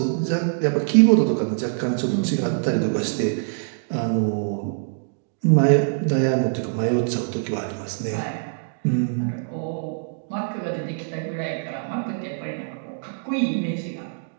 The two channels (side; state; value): left; silent; digital silence